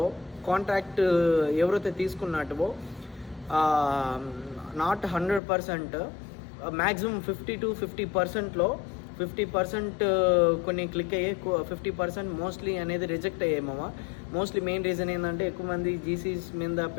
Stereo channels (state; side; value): drops out; right; at 5.4 s